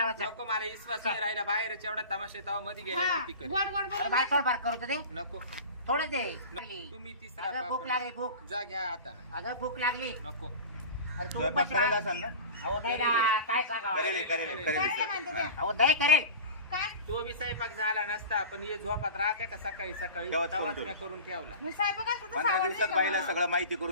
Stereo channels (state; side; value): inverted; both; correlation -0.34